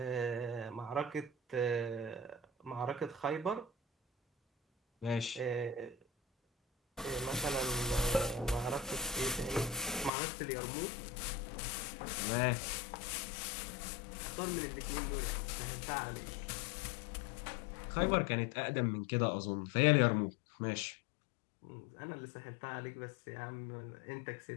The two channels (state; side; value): drops out; right; at 10.1 s